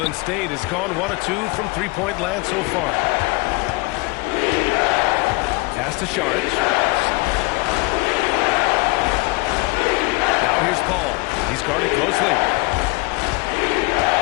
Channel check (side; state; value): right; quieter; 25.4 dB